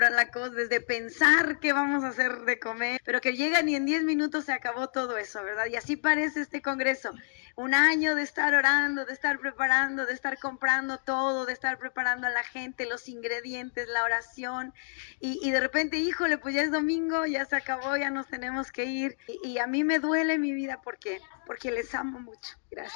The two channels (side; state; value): right; silent; digital silence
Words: la cosa, desde pensar qué vamos a hacer de comer, pero que llegan y en 10 minutos se acabó todo eso, ¿verdad? Y así parece este congreso. Un año de estar orando, de estar preparando, de estar comprando todo, de estar preparando a la gente, los ingredientes, la oración, y de repente, híjole, pues ya es domingo, ya se acabó, ya nos tenemos que ir, y a mí me duele mi vida porque les amo mucho.